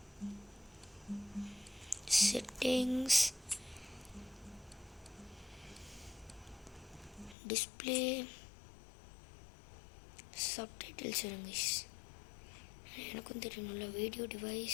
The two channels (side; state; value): right; drops out; at 7.4 s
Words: செட்டிங்ஸ், டிஸ்பிளே சப்டைட்டில்ஸ் இருங்க எனக்கும் தெரியணும்ல. Video